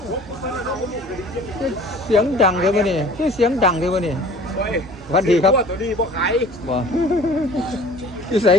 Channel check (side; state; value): both; normal; correlation 0.47